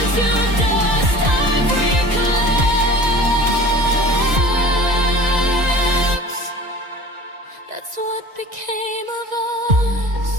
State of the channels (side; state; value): left; late; 1.9 ms